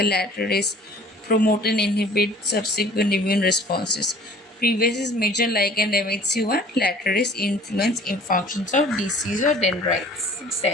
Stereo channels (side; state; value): both; normal; correlation 0.50